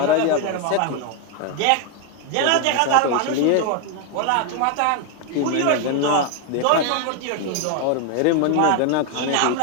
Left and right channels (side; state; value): both; different; correlation 0.01